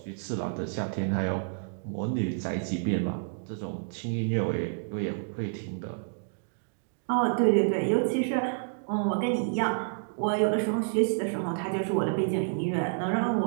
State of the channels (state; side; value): silent; left; digital silence